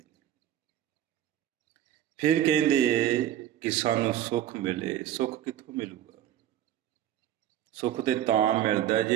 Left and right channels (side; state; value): left; quieter; 11.7 dB